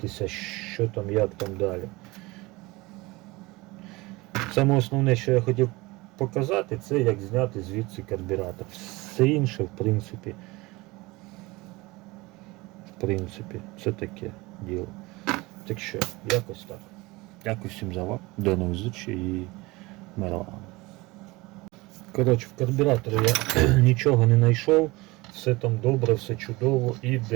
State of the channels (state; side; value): quieter; left; 22.4 dB